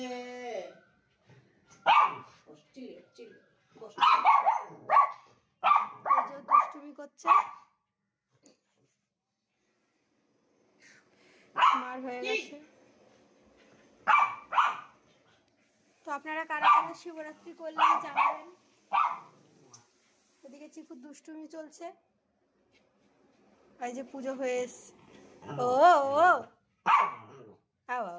দুষ্টুমি করছে, মার হয়ে গেছে। তো আপনারা কারা কারা শিবরাত্রি করলেন জানাবেন। ওদিকে চিকুর দুষ্টুমি চলছে, এই যে পুজো হয়ে এসছে। ও ও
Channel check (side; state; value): both; identical; correlation 1.00